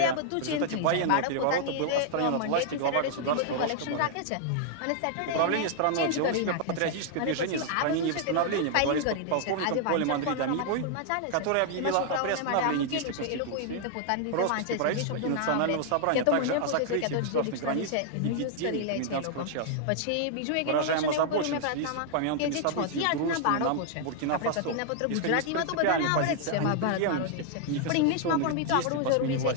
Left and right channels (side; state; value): both; different; correlation 0.00